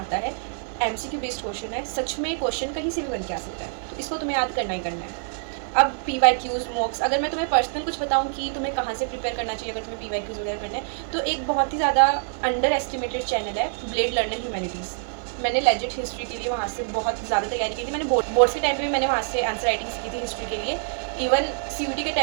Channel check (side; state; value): left; silent; digital silence